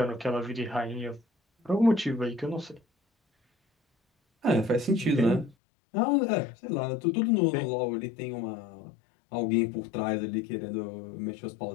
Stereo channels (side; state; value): right; drops out; at 5.6 s